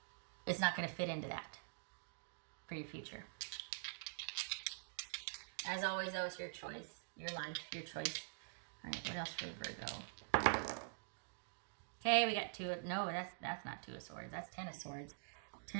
it's not going to fit into that for your future. As always, though, it's your choice, your life, your choice. All right, what else for Virgo? Okay, we got 2. No, that's not 2 of Swords. That's 10 of Swords.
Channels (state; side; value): silent; left; digital silence